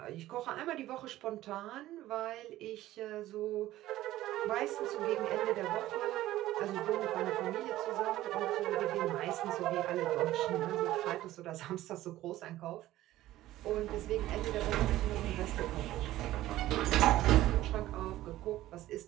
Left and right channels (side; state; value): left; quieter; 15.1 dB